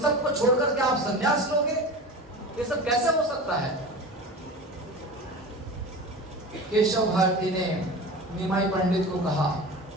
सब को छोड़कर के आप संन्यास लोगे? ये सब कैसे हो सकता है? केशव भारती ने निमाई पंडित को कहा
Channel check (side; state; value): both; normal; correlation 0.32